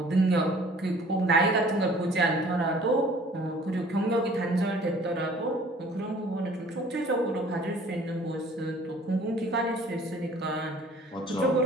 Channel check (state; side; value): normal; both; correlation 0.52